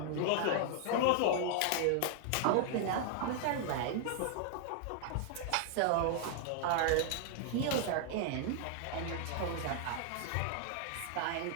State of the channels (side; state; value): both; different; correlation 0.00